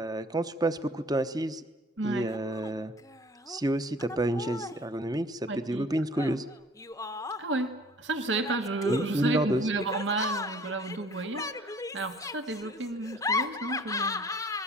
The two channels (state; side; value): normal; both; correlation 0.52